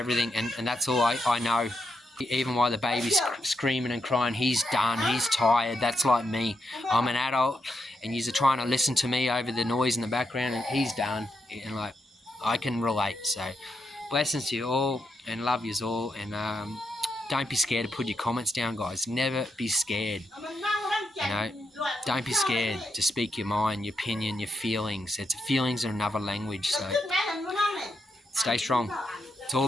and that's all I know. Even while the baby's screaming and crying, he's done, he's tired. That's like me. I'm an adult, and you're trying to listen to me over the noise in the background, and he's done. And like, I can relate. So blessings to you all, and love yous all, and don't be scared to put your comments down, guys. Never be scared. You know, don't be scared to speak your mind, your opinion, your feelings. Feelings are another language. So stay strong. It's all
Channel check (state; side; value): normal; both; correlation 0.82